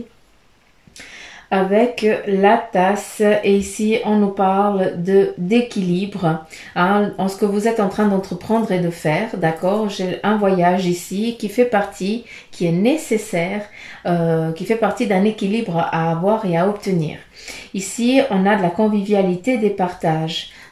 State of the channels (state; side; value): identical; both; correlation 1.00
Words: avec la tasse, et ici on nous parle de d'équilibre, hein, en ce que vous êtes en train d'entreprendre et de faire, d'accord. J'ai un voyage ici qui fait partie, qui est nécessaire, qui fait partie d'un équilibre à avoir et à obtenir. Ici on a de la convivialité, des partages.